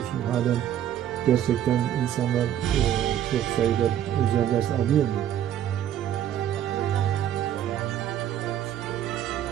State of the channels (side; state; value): left; quieter; 10.8 dB